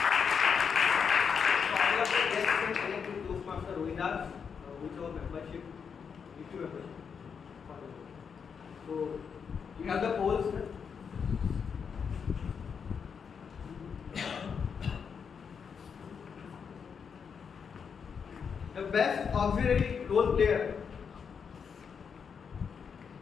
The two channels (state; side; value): quieter; right; 6.5 dB